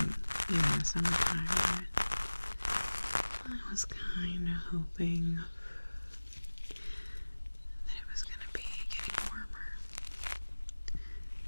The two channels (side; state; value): both; inverted; correlation -1.00